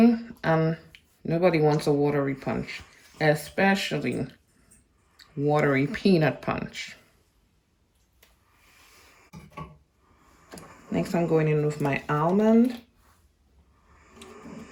and nobody wants a watery punch, especially watery peanut punch. Next, I'm going in with my almond.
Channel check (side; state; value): both; identical; correlation 1.00